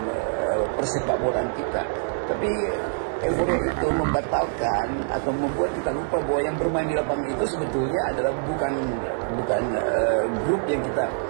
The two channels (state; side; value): silent; left; digital silence